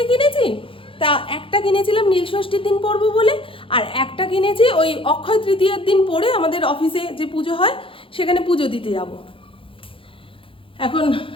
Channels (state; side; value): late; right; 0.26 ms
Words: কিনেছি, তা একটা কিনেছিলাম নীল ষষ্ঠীর দিন পরবো বলে, আর একটা কিনেছি ওই অক্ষয় তৃতীয়ার দিন পরে আমাদের অফিসে যে পুজো হয় সেখানে পুজো দিতে যাব। এখন